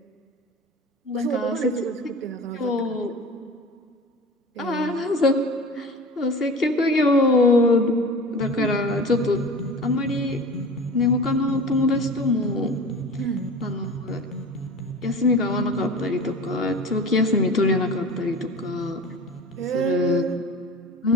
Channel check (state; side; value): normal; both; correlation 0.36